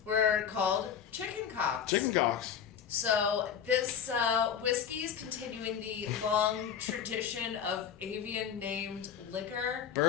were called chicken cocks. Chicken cocks. So this whiskey is continuing the long tradition of avian-named liquor.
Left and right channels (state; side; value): quieter; right; 8.3 dB